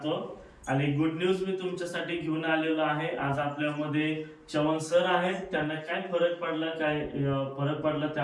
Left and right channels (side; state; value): both; identical; correlation 1.00